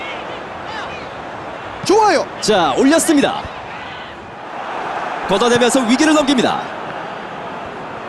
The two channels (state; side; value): identical; both; correlation 1.00